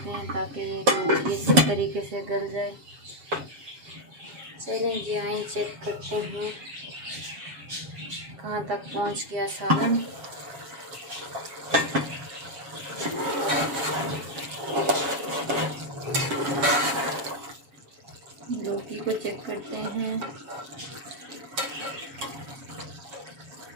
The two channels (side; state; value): left; late; 7.2 ms